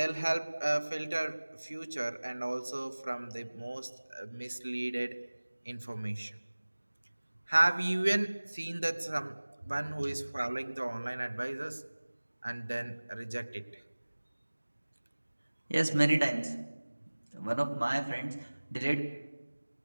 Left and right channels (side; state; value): both; inverted; correlation -1.00